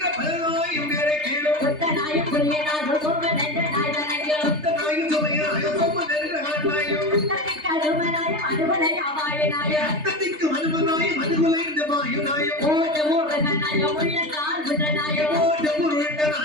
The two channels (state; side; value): late; left; 3.3 ms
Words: பலனாயும் பேரை கேளும் கொத்த நாயும் புரிய நாயும் சோமன் என்ற நாய்வனங்கள் கொத்த நாயும் சுமைய நாயும் சோமன் என்ற நாயும் அத்தத்திற்கு அருமனாயும் அனுபலை அவாயனாயும் அத்தத்திற்கு அனுபனாயும் அனுகுலைந்த மாயுனாயும் ஓட முருகனாயும் உள்ள கால் புடனாயும் ஓட